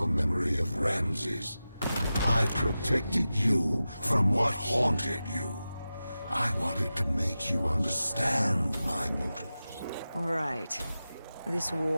memory of Ramses. I protected you from what haunted you. I wanted to make you understand my motives. Right. This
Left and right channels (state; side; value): inverted; both; correlation -0.94